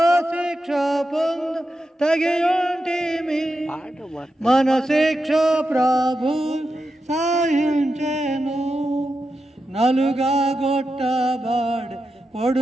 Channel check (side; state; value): both; normal; correlation 0.89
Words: శిక్ష పొందు తగియుంటిమి మన శిక్ష ప్రభు సహించెను నలుగా గొట్టబాడే